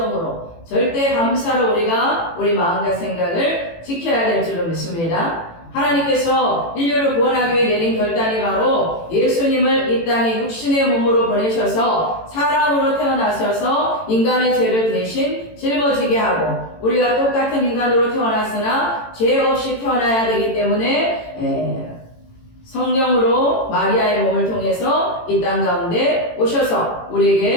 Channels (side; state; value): right; late; 18 ms